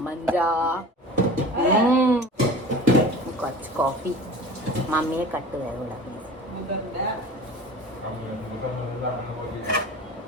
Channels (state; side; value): normal; both; correlation 0.39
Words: കുറച്ച് കോഫി. മമ്മിയെ കട്ട് വേഗം